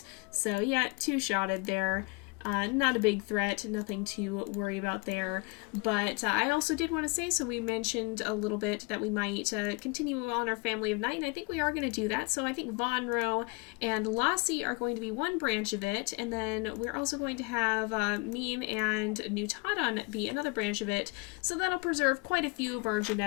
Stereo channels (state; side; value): quieter; right; 29.3 dB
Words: So yeah, two-shotted there. Not a big threat, nothing to worry about there. But I also did want to say, so we mentioned a little bit that we might continue on our Family of Night, and I think we are going to do that. So I think Vonro and Lassie are going to be one branch of it, and then we're also going to have Meme and Newtodon be another branch of it. So that'll preserve quite a few of our